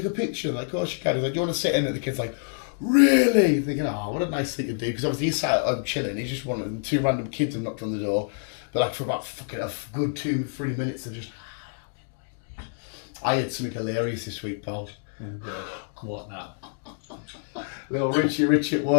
a picture? Like, oh, she can. He's like, do you want to sit in it? The kid's like, really? Thinking, oh, what a nice thing to do. Because obviously he's sat at home chilling. He's just one of them. Two random kids have knocked on the door. But like for about fucking a good 2-3 minutes, they're just. I had something hilarious this week, pal. What now? Little Richie at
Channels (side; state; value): right; silent; 57 dB below the other